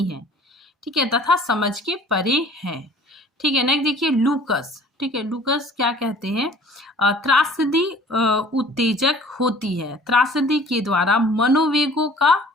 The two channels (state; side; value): normal; both; correlation 0.50